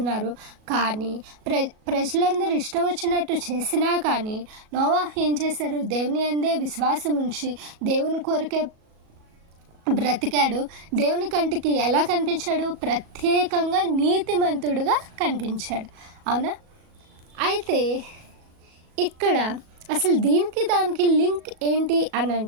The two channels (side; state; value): left; late; 37 ms